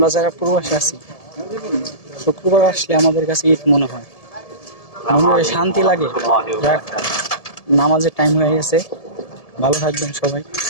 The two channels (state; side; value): late; right; 1.7 ms